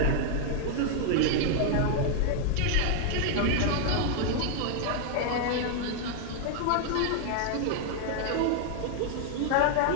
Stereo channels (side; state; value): both; different; correlation 0.00